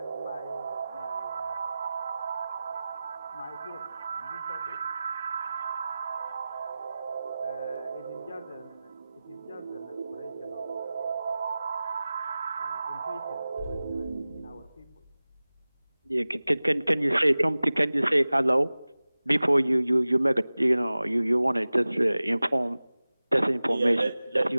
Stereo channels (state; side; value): inverted; both; correlation -0.97